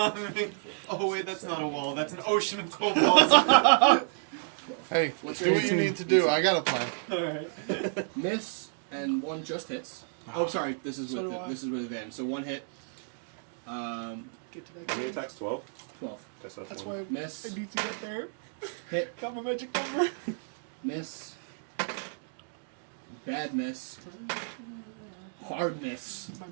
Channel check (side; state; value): left; silent; digital silence